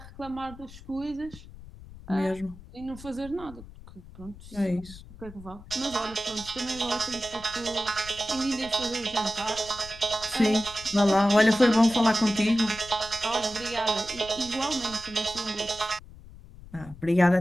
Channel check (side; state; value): left; noise; rumble, 18 dB below the sound